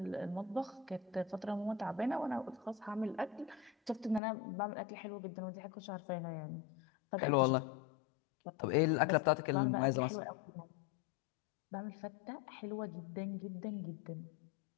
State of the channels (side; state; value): right; drops out; at 4.2 s